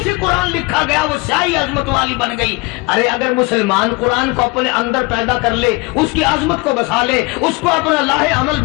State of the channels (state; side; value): quieter; right; 25.1 dB